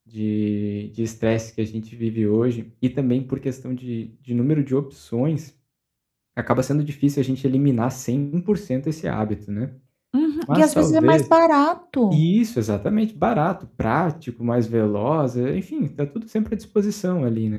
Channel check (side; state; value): both; identical; correlation 1.00